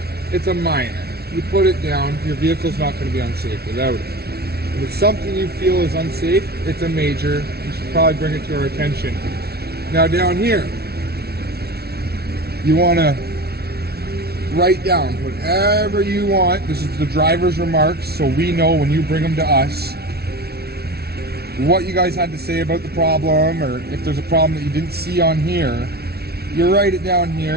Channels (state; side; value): late; left; 0.46 ms